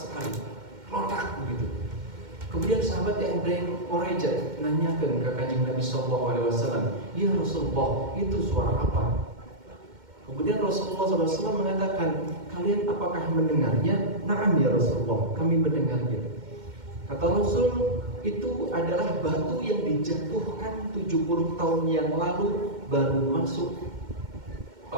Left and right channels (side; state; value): left; late; 2.1 ms